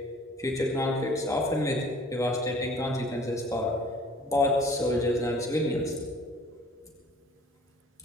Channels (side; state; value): both; normal; correlation 0.51